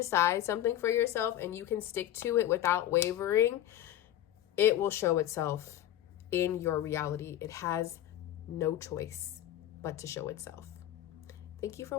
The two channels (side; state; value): right; quieter; 12.5 dB